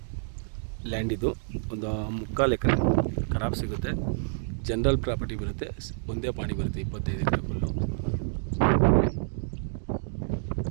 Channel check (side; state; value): left; silent; digital silence